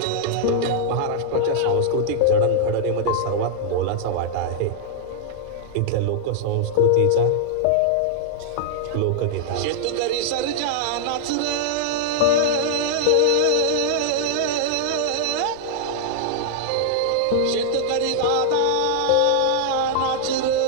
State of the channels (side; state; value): both; different; correlation -0.01